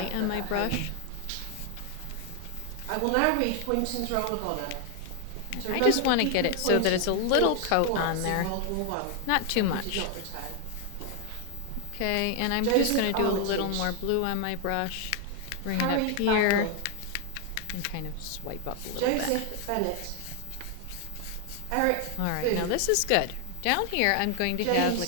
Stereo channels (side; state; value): both; different; correlation 0.00